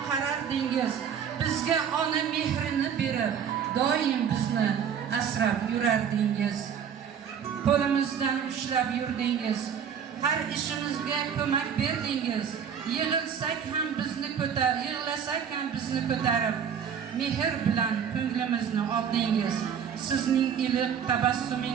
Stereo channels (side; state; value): left; quieter; 7.7 dB